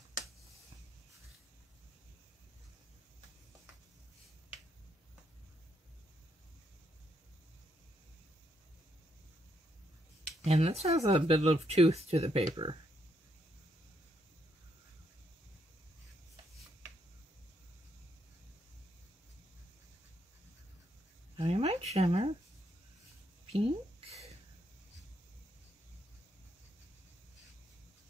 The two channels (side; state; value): both; normal; correlation 0.76